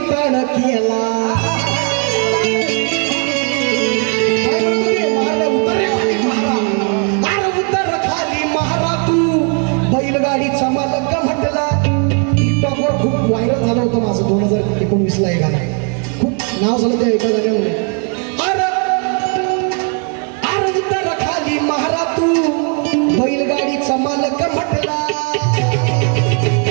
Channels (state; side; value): quieter; left; 38.3 dB